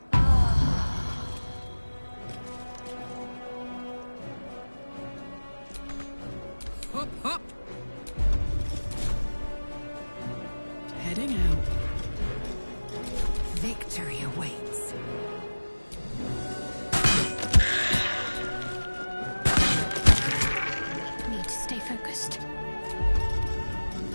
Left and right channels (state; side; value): inverted; both; correlation -1.00